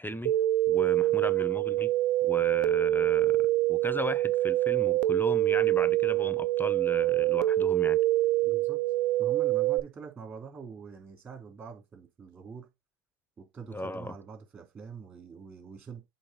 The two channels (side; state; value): left; quieter; 11.7 dB